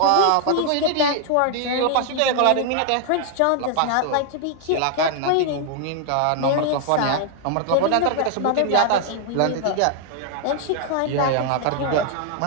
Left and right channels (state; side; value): different; both; correlation 0.00